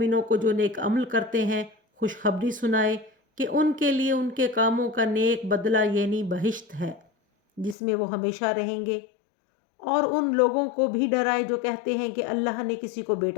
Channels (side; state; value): right; drops out; at 7.8 s